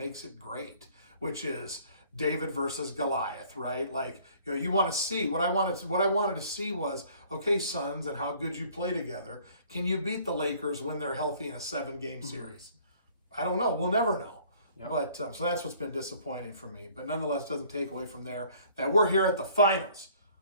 it great, which is David versus Goliath, right? Like, you want to see what I wanted to see was, okay, Suns, and how good you play together. Can you beat the Lakers when they're healthy in a 7-game series? I don't know. We'll never know. Yep. But so that's what's been disappointing for me. But nonetheless, doesn't take away from there that we're here at the finals.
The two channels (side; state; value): both; inverted; correlation -0.56